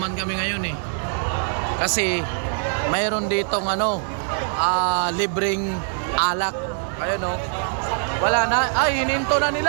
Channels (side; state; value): left; silent; 63 dB below the other